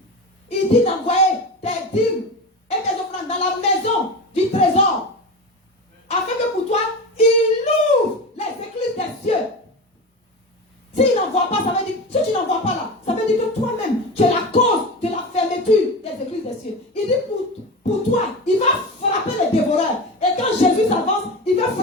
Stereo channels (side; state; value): both; normal; correlation 0.26